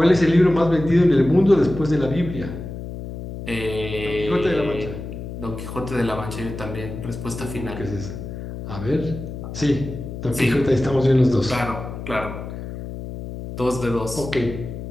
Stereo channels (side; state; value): left; noise; hum, 9 dB below the sound